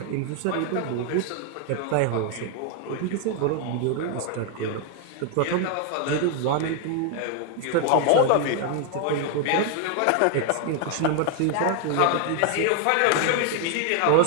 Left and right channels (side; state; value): both; different; correlation 0.00